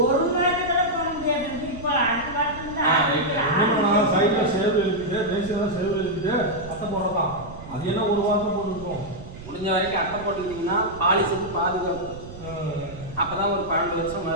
ஒரு மாதத்துல போக முடியாது. இப்போ அடுத்த வாரத்தில் சைடில் சேவ் இருக்குது, பேசியெல்லாம் சேவ் இருக்குது, அட்டை போடலாம். அது என்ன ஒரு வாரத்தில் போட்டுருக்கோம். முடிஞ்ச வரைக்கும் அட்டை போட்டுக்கிட்டிங்கன்னா பாலிஷுக்கு பாதுகாப்பு. அப்பதான் ஒரு 12 வருஷம்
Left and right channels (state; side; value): noise; right; rumble, 14 dB below the sound